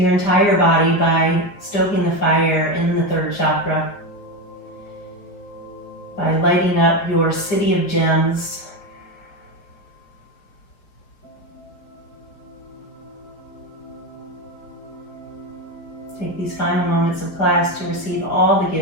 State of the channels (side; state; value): right; late; 4.7 ms